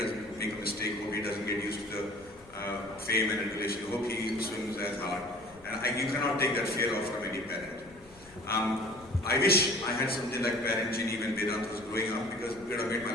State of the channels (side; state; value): left; noise; rumble, 24 dB below the sound